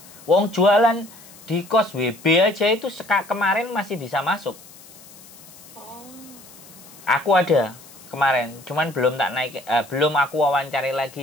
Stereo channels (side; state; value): left; noise; hiss, 21 dB below the sound